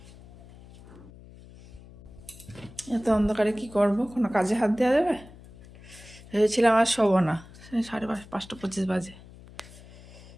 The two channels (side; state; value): left; noise; hum, 20 dB below the sound